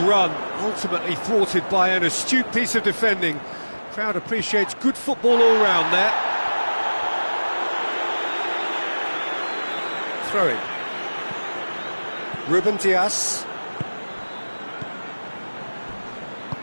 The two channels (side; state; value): both; inverted; correlation -1.00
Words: run, ultimately thwarted by an astute piece of defending. Crowd appreciates good football all round there. Throw in. Ruben Dias.